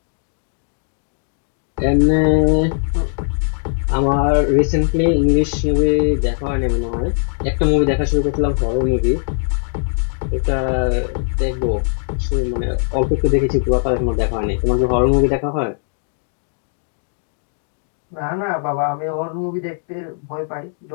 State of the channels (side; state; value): right; silent; 66 dB below the other